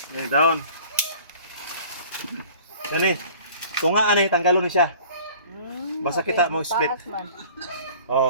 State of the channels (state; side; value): inverted; both; correlation -0.48